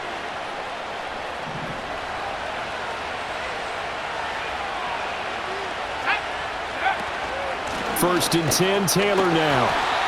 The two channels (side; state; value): both; identical; correlation 1.00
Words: First and 10, Taylor now.